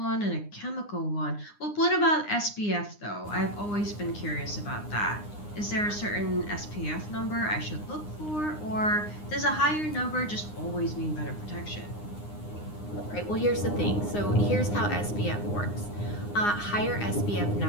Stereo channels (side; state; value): right; late; 9.8 ms